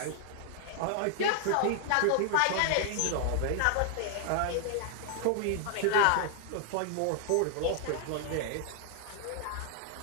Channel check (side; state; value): both; different; correlation 0.00